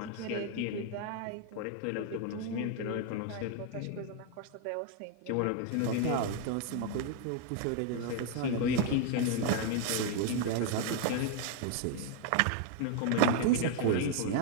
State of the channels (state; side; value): different; both; correlation 0.00